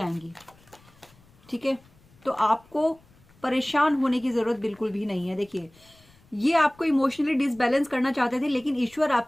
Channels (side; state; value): left; noise; rumble, 28 dB below the sound